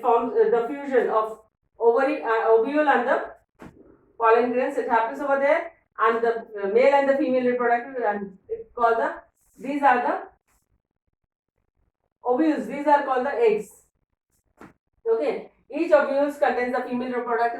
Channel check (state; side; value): identical; both; correlation 1.00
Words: the fusion of ovule and the pollen grains. It happens over there, and the male and the female reproductive, and it's called the. These are the ovules. These are called the eggs. Okay. Each ovules contains the female